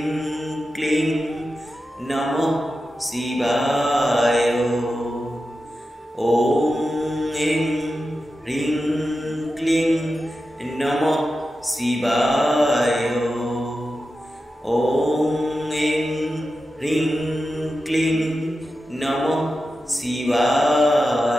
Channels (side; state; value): both; normal; correlation 0.91